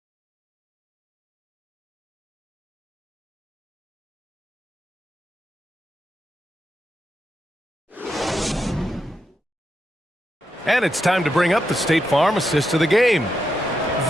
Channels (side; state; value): both; normal; correlation 0.84